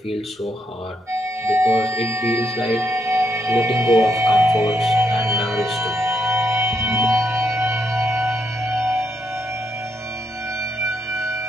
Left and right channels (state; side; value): normal; both; correlation 0.78